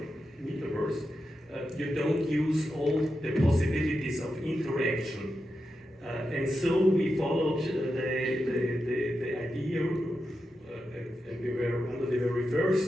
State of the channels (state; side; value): normal; both; correlation 0.88